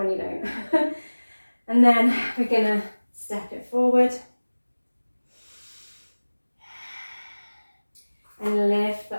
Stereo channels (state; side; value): inverted; both; correlation -1.00